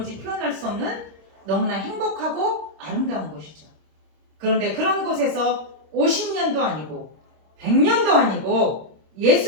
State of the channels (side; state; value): left; late; 26 ms